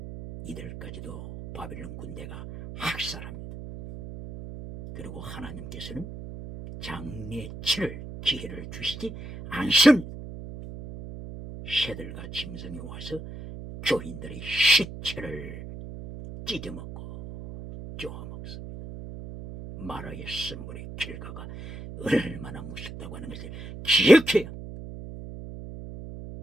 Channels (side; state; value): right; noise; hum, 11 dB below the sound